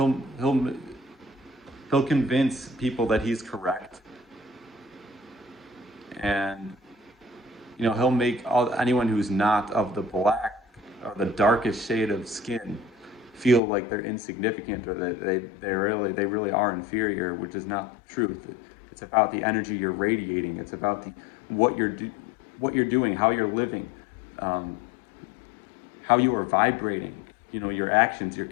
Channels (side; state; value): right; drops out; at 13.6 s